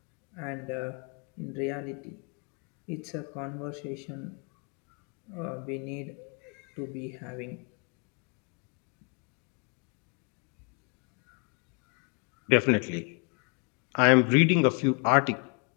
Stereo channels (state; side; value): quieter; right; 36.6 dB